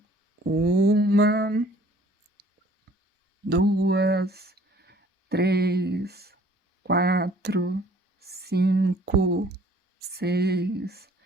1, 2, 3, 4, 5, 6,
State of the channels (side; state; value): both; normal; correlation 0.55